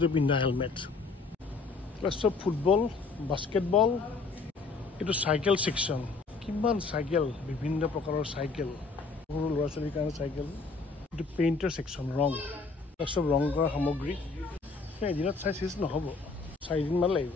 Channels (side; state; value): right; quieter; 4.2 dB